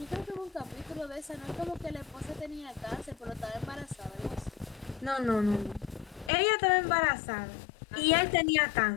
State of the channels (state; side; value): drops out; right; at 6.3 s